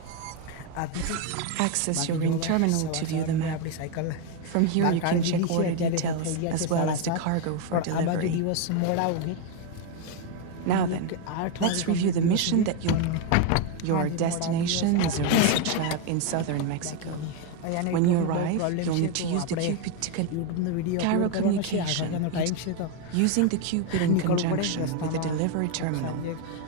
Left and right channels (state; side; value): different; both; correlation 0.02